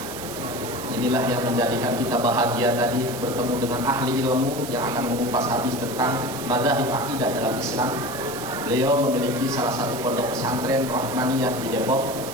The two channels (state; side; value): noise; right; hiss, 11 dB below the sound